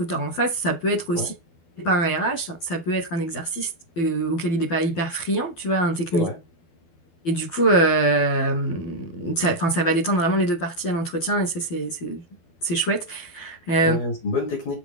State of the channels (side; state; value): right; late; 12 ms